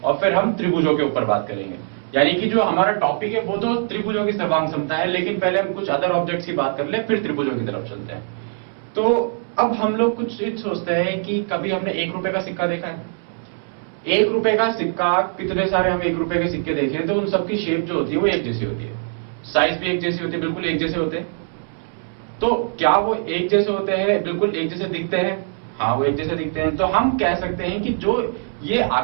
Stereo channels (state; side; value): silent; left; 64 dB below the other